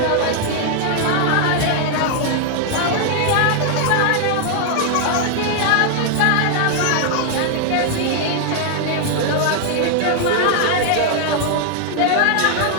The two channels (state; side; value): different; both; correlation 0.00